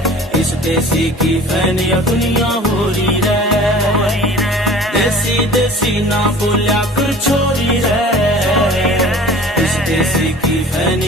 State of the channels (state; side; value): normal; both; correlation 0.44